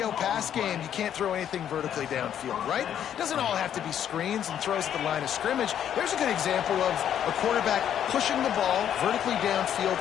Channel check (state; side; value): quieter; right; 9.8 dB